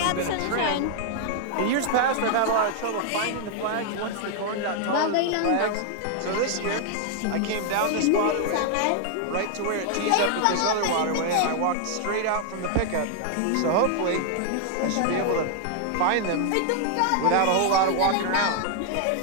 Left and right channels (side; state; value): both; different; correlation 0.00